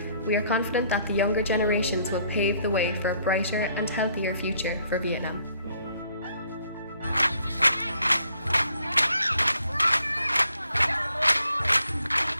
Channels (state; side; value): inverted; both; correlation -0.67